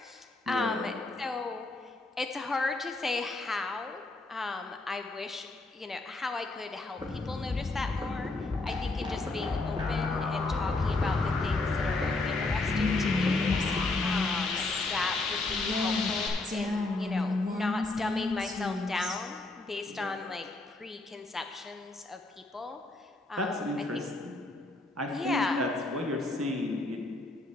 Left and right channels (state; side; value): quieter; right; 3.1 dB